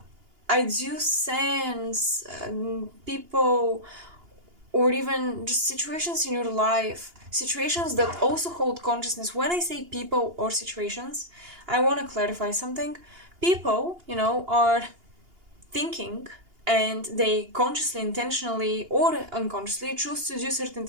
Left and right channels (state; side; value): late; left; 2.8 ms